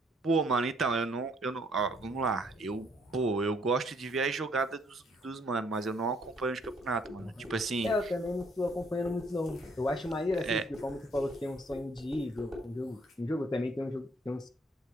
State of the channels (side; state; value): both; normal; correlation 0.65